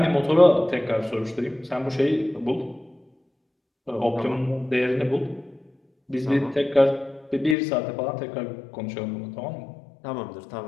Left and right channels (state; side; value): drops out; right; at 7.6 s